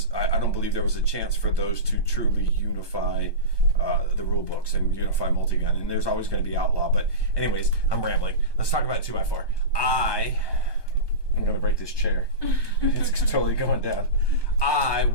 I don't believe there was a chance for those to truly unify the rule books and unify multi-gun. And there's always going to be outlaw. But anyways, I'm rambling. Let's talk about 2x4. I'm going to break this chair. It's totally going down. I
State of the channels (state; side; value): late; right; 1.2 ms